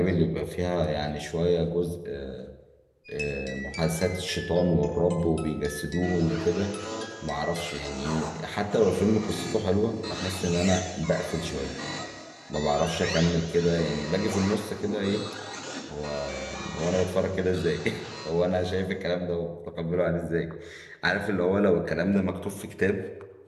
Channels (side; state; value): both; identical; correlation 1.00